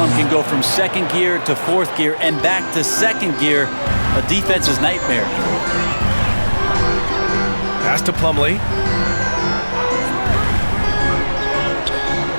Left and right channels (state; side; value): inverted; both; correlation -1.00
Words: can go from 2nd gear to 4th gear and back to 2nd gear a defense's nightmare. Pass to Plumlee.